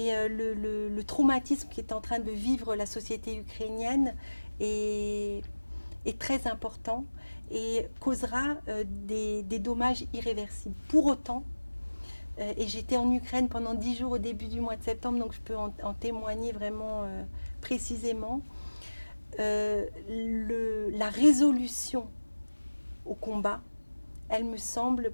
le traumatisme qui est en train de vivre la société ukrainienne est très important et causera des dommages irréversibles. Pour autant, et j'étais en Ukraine pendant 10 jours au début du mois de septembre, donc je peux en témoigner vraiment précisément. La résolution au combat, elle me semble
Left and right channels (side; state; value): both; inverted; correlation -1.00